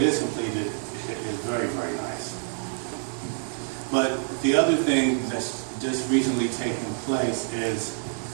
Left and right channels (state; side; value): silent; left; 60 dB below the other